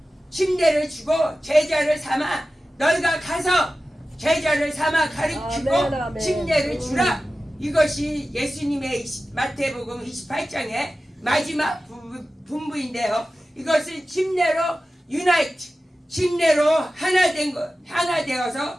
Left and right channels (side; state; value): both; normal; correlation 0.95